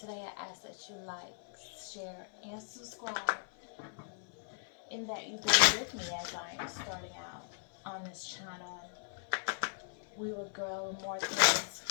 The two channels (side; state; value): right; silent; 53 dB below the other